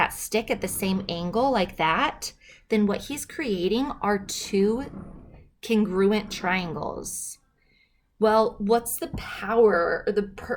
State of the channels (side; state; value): both; identical; correlation 1.00